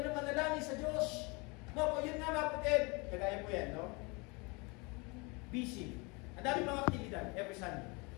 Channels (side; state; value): right; quieter; 28.6 dB